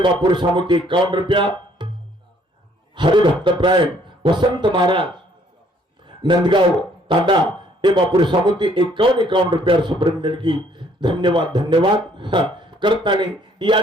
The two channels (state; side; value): normal; both; correlation 0.63